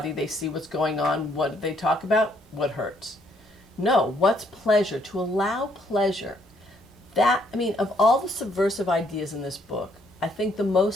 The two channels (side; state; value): both; normal; correlation 0.69